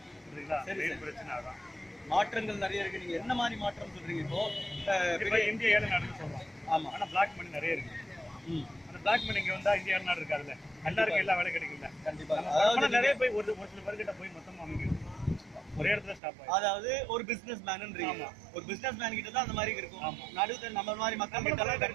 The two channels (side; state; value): left; drops out; at 16.2 s